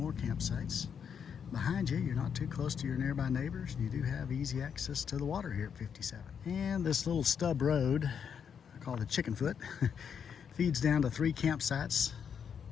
campsites. Behind you, you're not too close to your nearby neighbors. You do have easy access to the water here at 57. And this little stub road, I call it the chicken foot, feeds down to 3 campsites.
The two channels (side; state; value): right; quieter; 7.4 dB